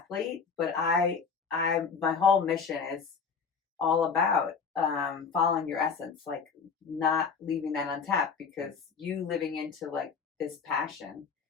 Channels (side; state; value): right; quieter; 5.7 dB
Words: But my whole mission is all about following your essence, like not leaving that untapped, because you living into like this passion,